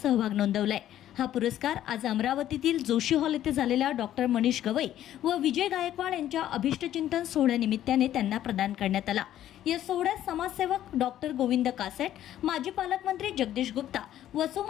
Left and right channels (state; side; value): quieter; right; 12.1 dB